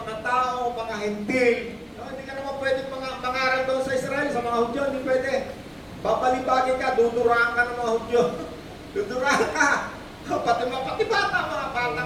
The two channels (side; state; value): both; identical; correlation 1.00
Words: mga tao, mga hentil, hindi ka naman pwede mangaral doon sa Israel, sa mga Hudyo, hindi pwede. Babalibagin ka, duduraan ka ng mga Hudyo. Duduraan ka. Pati bata, mga